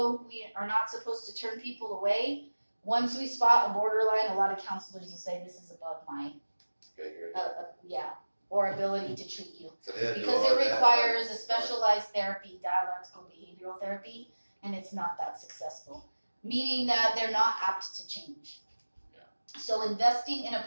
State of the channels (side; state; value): both; inverted; correlation -1.00